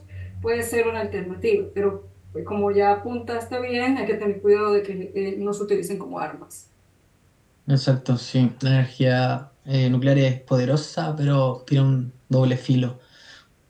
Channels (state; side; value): identical; both; correlation 1.00